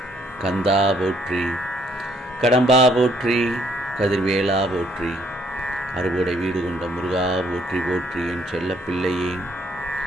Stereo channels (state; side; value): normal; both; correlation 0.67